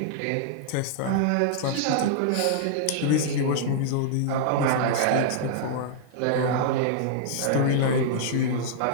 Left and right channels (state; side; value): different; both; correlation -0.01